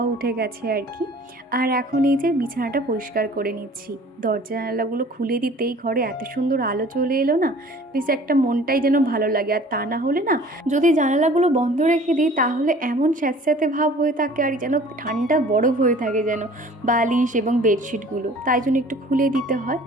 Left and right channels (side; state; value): both; normal; correlation 0.49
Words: উঠে গেছে আর কি। আর এখন এই যে বিছানাটা পরিষ্কার করে নিচ্ছি। দরজা জানালাগুলো খুলে দিতেই ঘরে এত সুন্দর আলো চলে এলো না, বেশ একটা মনটাই যেন ভালো লাগে। আর তা না হলে না, যদি জানালাগুলো বন্ধ রেখে দিই তাহলে এমন স্যাঁতস্যাঁতে ভাব হয়ে থাকে আর যেন ঠান্ডা বরফ হয়ে থাকে যেন বালিশ এবং বেডশিটগুলো, তাই জন্য একটু খুলে দিতে হয়।